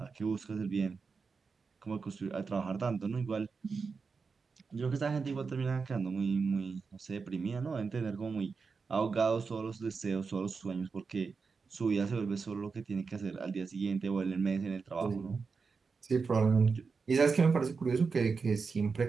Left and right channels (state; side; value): quieter; left; 4.9 dB